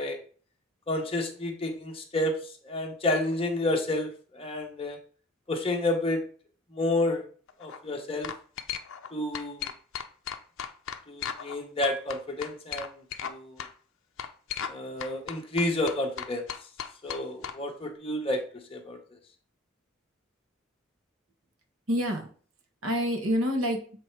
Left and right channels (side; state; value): both; normal; correlation 0.41